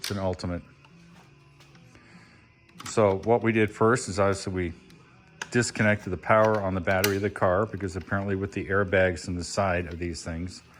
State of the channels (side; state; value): both; identical; correlation 1.00